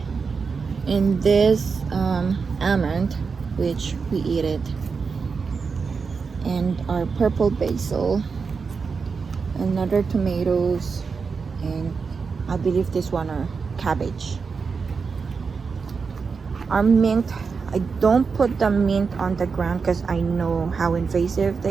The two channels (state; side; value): quieter; left; 5.2 dB